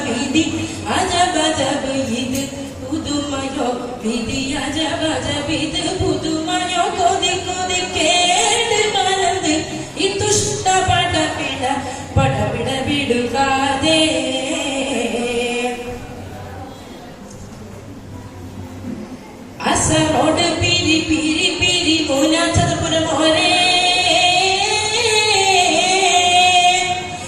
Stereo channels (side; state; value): both; identical; correlation 1.00